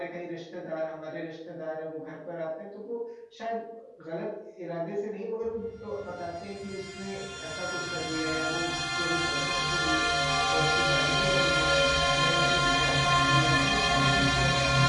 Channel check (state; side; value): identical; both; correlation 1.00